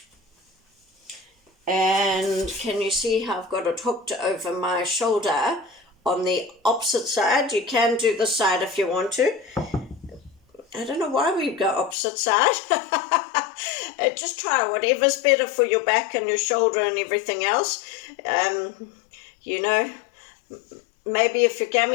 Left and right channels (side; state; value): right; drops out; at 12.0 s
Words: And can you see how I've got it hooked over my shoulder on the opposite side? You can do the side if you want to. I don't know why we go opposite side. Just try whatever's better for your back and your shoulder and everything else. Maybe if your